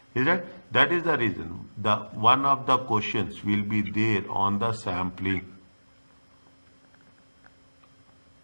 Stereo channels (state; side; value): inverted; both; correlation -1.00